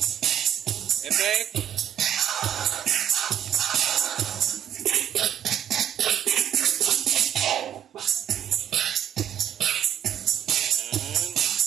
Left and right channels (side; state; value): left; quieter; 10.3 dB